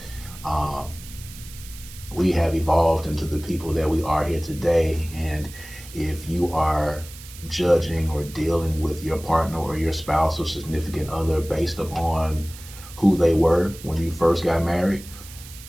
We have evolved into the people that we are here today, and if you are judging or dealing with your partner or your spouse or significant other based upon who they were when you first got married,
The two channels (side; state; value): right; noise; hiss, 17 dB below the sound